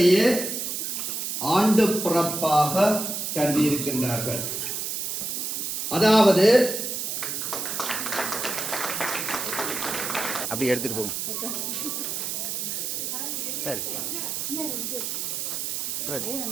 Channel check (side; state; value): right; noise; hiss, 3 dB below the sound